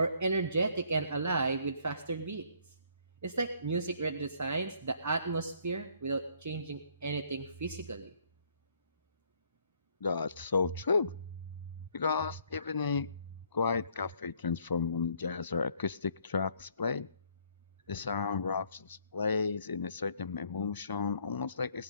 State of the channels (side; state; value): both; inverted; correlation -0.64